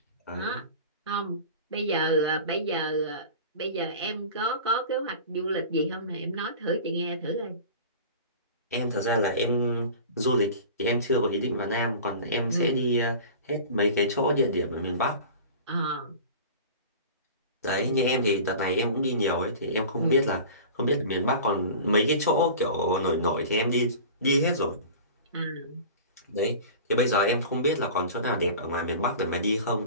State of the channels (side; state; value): both; inverted; correlation -0.38